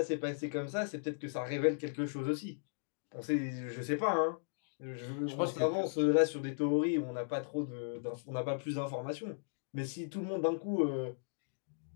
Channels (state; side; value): silent; right; digital silence